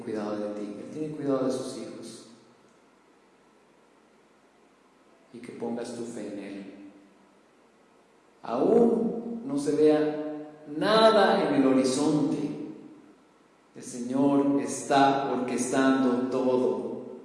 de ti, Él tiene cuidado de sus hijos. Y que pongas tu fe en Él. Aún no se vea nada en el horizonte, el Señor está orquestando todo.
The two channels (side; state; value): both; identical; correlation 1.00